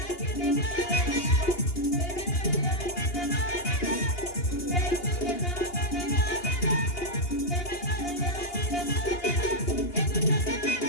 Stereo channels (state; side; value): late; right; 2.8 ms